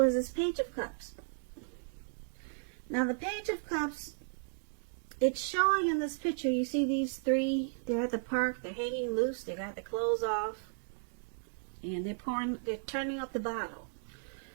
as this Page of Cups. Now the Page of Cups, it's showing in this picture, you see these three, they're at the park, they're hanging loose, they got their clothes off, and they're turning up the bottle.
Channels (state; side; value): silent; left; digital silence